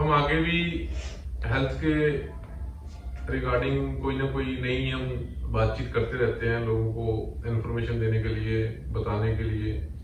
आगे भी हेल्थ के रिगार्डिंग कोई ना कोई नई हम बातचीत करते रहते हैं, लोगों को इन्फॉर्मेशन देने के लिए, बताने के लिए।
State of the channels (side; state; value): both; identical; correlation 1.00